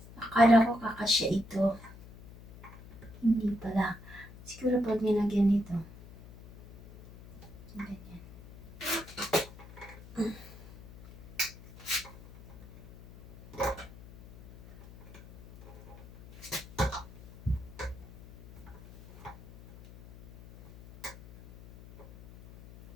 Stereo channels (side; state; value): left; noise; hum, 18 dB below the sound